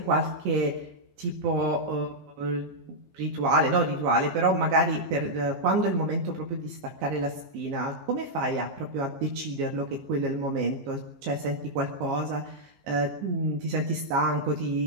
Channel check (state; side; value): late; left; 15 ms